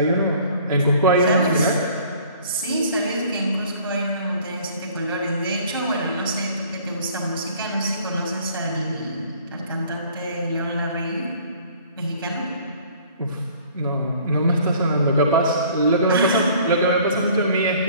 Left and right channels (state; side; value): inverted; both; correlation -0.53